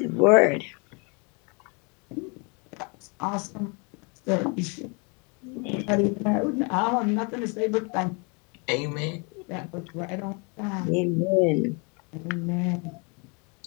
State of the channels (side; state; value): right; quieter; 33.1 dB